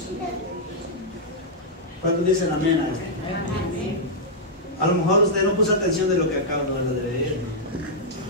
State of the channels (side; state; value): both; normal; correlation -0.07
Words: ¿Cuántos dicen amén a esto? A lo mejor usted no puso atención de lo que acabo de leer.